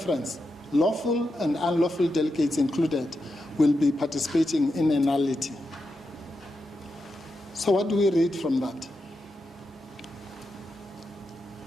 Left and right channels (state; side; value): normal; both; correlation 0.87